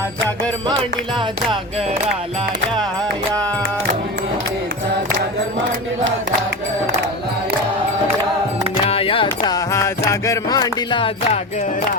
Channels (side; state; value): both; normal; correlation 0.25